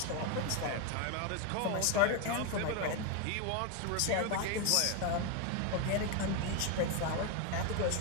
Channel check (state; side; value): different; both; correlation 0.01